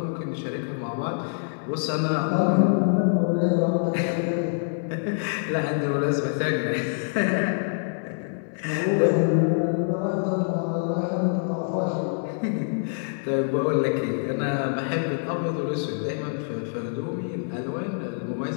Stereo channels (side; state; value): right; silent; digital silence